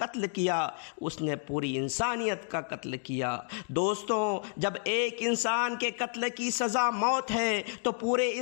کیا اس نے پوری انسانیت کا قتل کیا۔ دوستوں، جب ایک انسان کے قتل کی سزا موت ہے تو پورے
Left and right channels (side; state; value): right; silent; 57 dB below the other